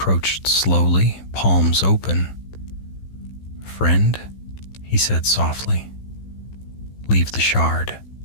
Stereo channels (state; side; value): late; right; 15 ms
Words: slowly, palms open. "Friend," he said softly, "leave the shard.